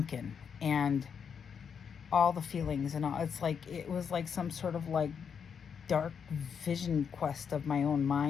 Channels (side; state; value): right; quieter; 6.9 dB